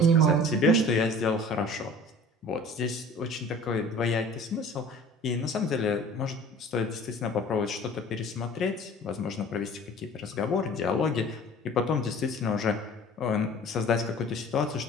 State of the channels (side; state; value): both; normal; correlation 0.46